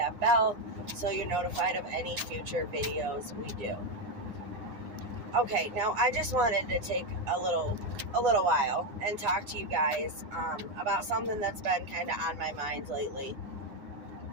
bell so you're notified of any future videos we do. Okay, now I just wanted to take a little while and talk to you guys about something that's been kind of on my mind lately.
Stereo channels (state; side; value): late; left; 9.7 ms